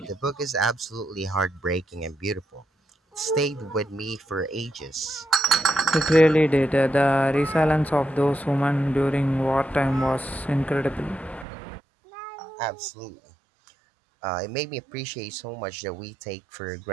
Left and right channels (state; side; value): drops out; left; at 11.5 s